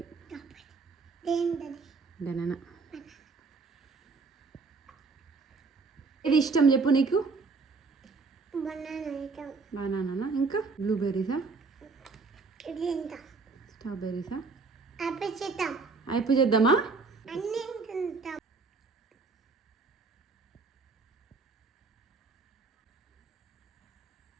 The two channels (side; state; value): left; quieter; 4.3 dB